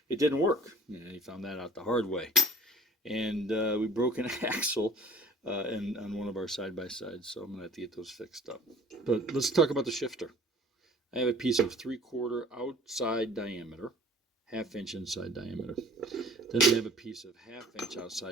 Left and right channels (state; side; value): normal; both; correlation 0.49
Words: It didn't work. He found that out the hard way. And we broke an axle on one of our side-by-sides. So I'm going to have to get those fixed up. But let's talk about the shifter. I have a piece of 3/4 outside diameter, 1/2 inch inside diameter. Then I have a piece of 1/2 inch